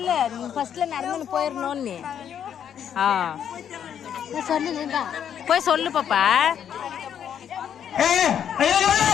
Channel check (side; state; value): right; quieter; 8.9 dB